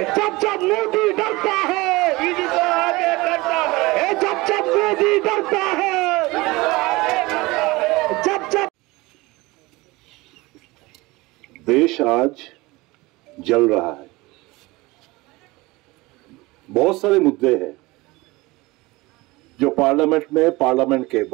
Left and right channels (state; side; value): quieter; left; 21.9 dB